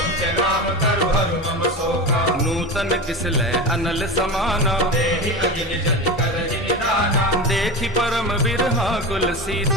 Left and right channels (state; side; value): normal; both; correlation 0.25